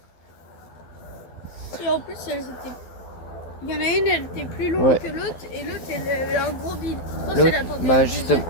Et en plus, elles étaient... Il y en a une, elle était plus longue Ouais. que l'autre, et l'autre, elle avait un gros bide. Je pense L'autre, qu'elle attendait bah le justement,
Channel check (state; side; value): late; right; 12 ms